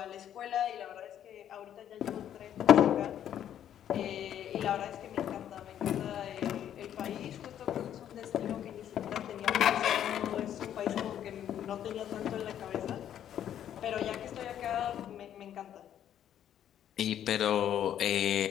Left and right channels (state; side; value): quieter; right; 10.3 dB